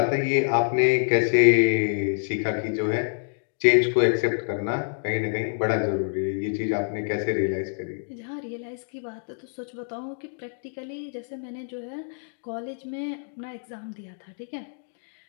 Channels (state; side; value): silent; right; digital silence